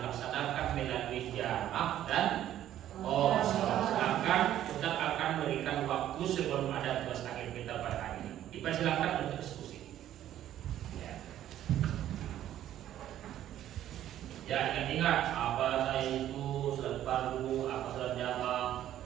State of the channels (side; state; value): left; quieter; 12.0 dB